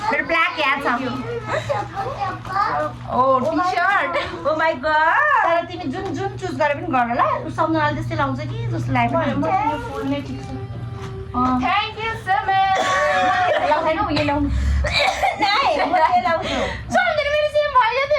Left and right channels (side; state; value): both; identical; correlation 1.00